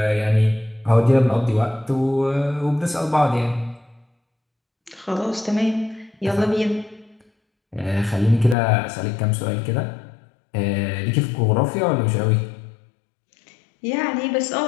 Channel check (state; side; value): drops out; right; at 8.6 s